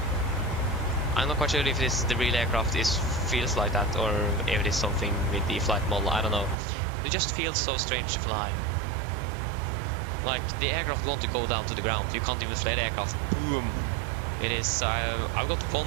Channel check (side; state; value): left; drops out; at 6.6 s